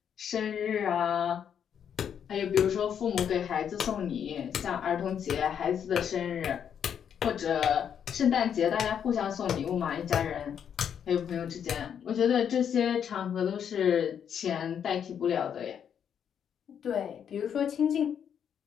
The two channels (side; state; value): right; quieter; 8.3 dB